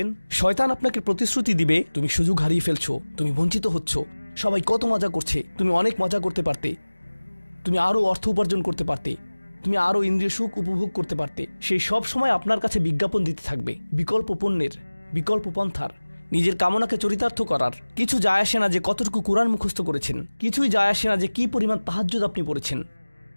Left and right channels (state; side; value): inverted; both; correlation -1.00